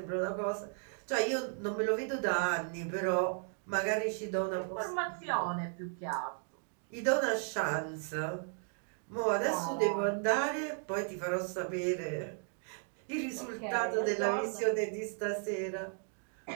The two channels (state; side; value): silent; left; 54 dB below the other